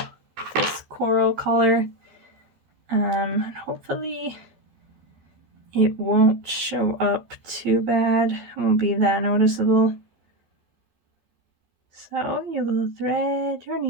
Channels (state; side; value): late; left; 13 ms